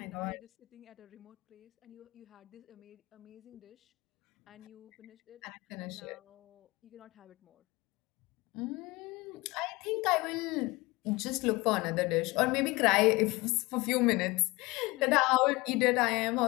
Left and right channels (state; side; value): quieter; right; 23.0 dB